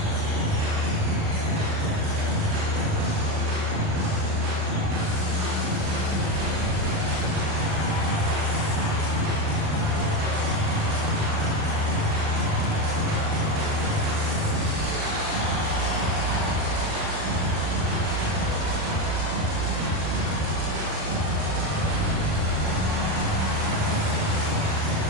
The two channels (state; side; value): late; left; 39 ms